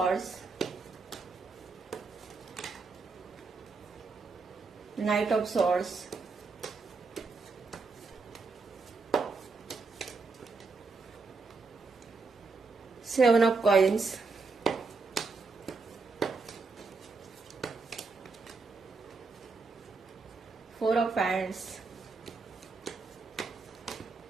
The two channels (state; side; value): quieter; left; 4.2 dB